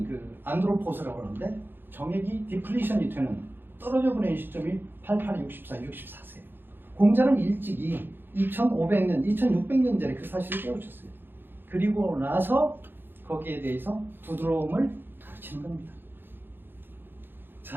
그 안드로포스라고 하는데 정액이 디플리션이 되는 떨어져 버리는 시점이 88, 64, 64세예요. 공자는 일찍이 2500년, 2600년 전에 그 사실을 깨우쳤어요. 그리고 나서 거기에 대해서 부드러움을 가르치는 겁니다.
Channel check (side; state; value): left; late; 0.099 ms